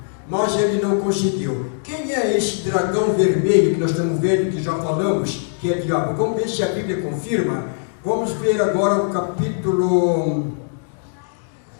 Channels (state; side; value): silent; right; digital silence